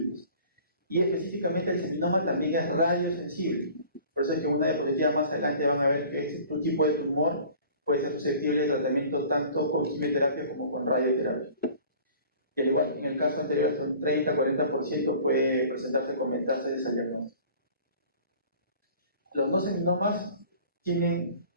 Y específicamente el seminoma también es radiosensible. Por eso es que en una diapositiva más adelante van a ver que este tipo de tumor puede ser susceptible de tratamiento tanto con quimioterapia como con radioterapia. Y al igual que en el caso anterior, hasta un 30-40% puede presentarse con metástasis al diagnóstico. Los no seminomas tienen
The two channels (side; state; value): both; inverted; correlation -0.47